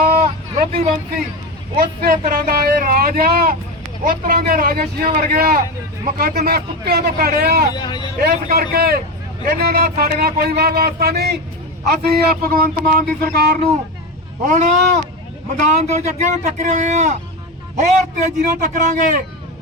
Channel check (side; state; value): both; normal; correlation 0.18